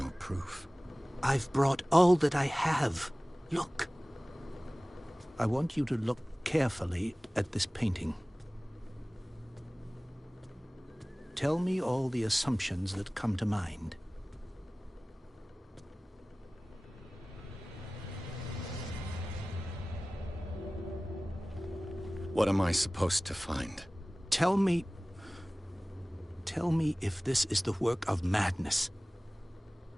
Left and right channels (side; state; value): both; normal; correlation 0.98